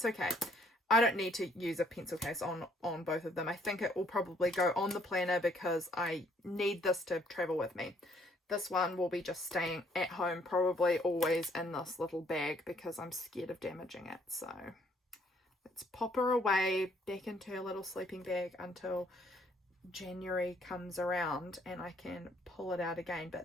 okay. I don't need to use a pencil case on both of them. I think it will probably go on the planner because I need this to travel with me. This one will be just staying at home, probably always in this little bag because I'm scared of damaging it. So let's pop her away back into her little sleeping bag until January comes around and I can pull it out again.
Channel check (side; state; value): both; normal; correlation 0.65